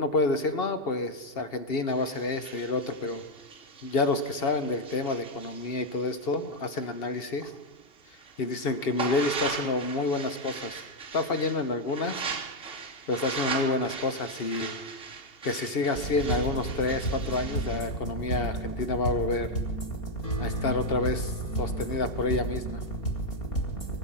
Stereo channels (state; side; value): late; right; 2.8 ms